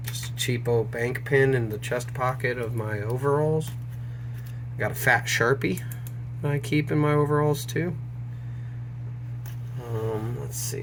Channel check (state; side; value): identical; both; correlation 1.00